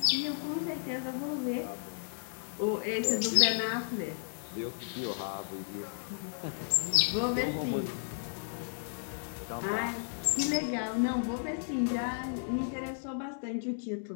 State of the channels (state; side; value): silent; right; digital silence